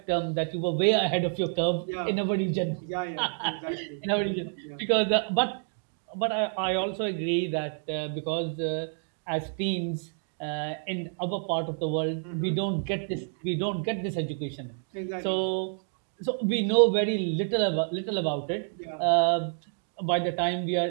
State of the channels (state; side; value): silent; left; 59 dB below the other